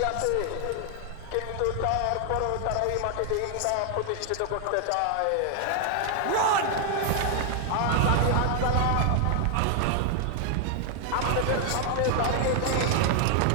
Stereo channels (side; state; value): both; different; correlation 0.00